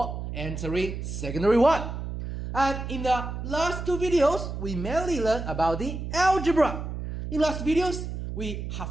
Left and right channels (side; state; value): right; noise; hum, 6 dB below the sound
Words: entering secondary 1. And in the last 2 videos, we mainly learned about the algebra. In last videos, we